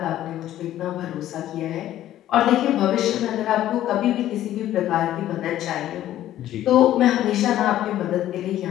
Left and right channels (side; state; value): right; quieter; 12.9 dB